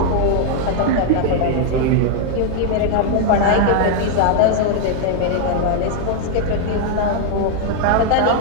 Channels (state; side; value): different; both; correlation 0.00